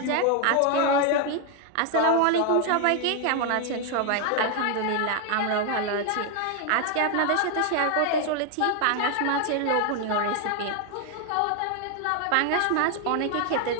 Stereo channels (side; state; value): both; different; correlation 0.00